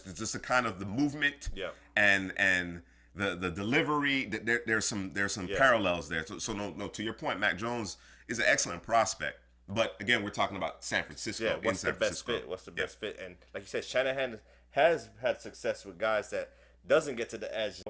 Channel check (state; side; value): identical; both; correlation 1.00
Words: the kind of the movement and the delivery. There's some parallels there. So no, to your point, Mac Jones is an excellent prospect. But again, we're talking about San Francisco. Yeah, what's the best fit? What's the best fit? And like you said, Shanahan has had success with guys that doesn't get to the edge,